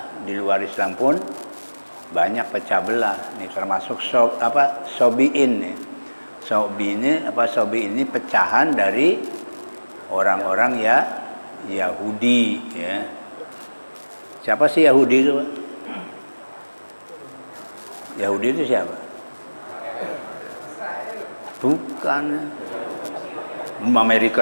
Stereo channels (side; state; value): both; inverted; correlation -1.00